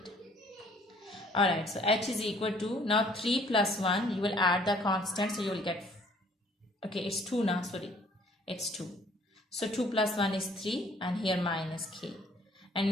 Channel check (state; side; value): normal; both; correlation 0.58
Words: Alright, so h is equal to, now 3 plus 1, you will add the constant, so you will get, okay, it's 2 now, sorry, it's 2. So 2 plus 1 is 3 and here minus k. And